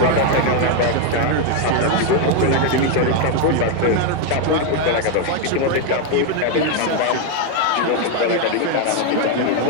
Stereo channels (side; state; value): both; different; correlation 0.01